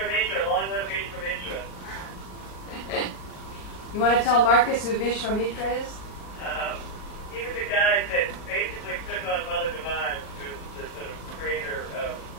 long live Vishwamitra. You want to tell Marcus who Vishwamitra is? He was a guy that basically took on Mother Divine, who's the sort of creator of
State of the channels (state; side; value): late; right; 38 ms